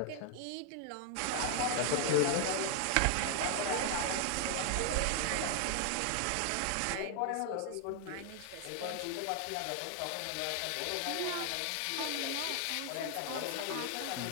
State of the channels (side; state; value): both; different; correlation 0.00